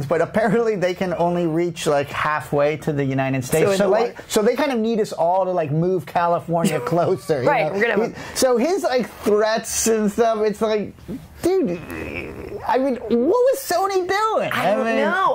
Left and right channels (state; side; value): identical; both; correlation 1.00